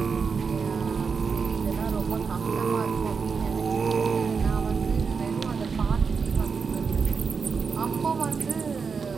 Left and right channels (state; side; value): quieter; left; 5.4 dB